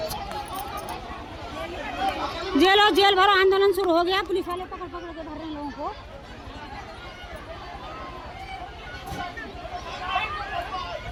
जेल भरो आंदोलन शुरू हो गया, पुलिस वाले पकड़ पकड़ के भर रहे हैं लोगों को।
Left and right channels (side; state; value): both; identical; correlation 1.00